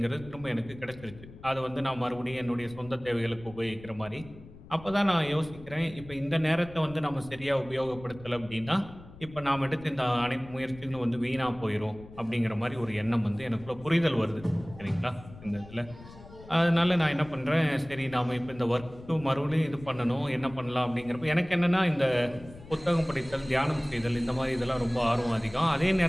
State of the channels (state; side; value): noise; left; rumble, 18 dB below the sound